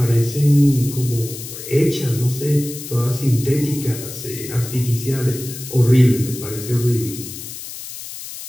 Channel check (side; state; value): left; noise; hiss, 11 dB below the sound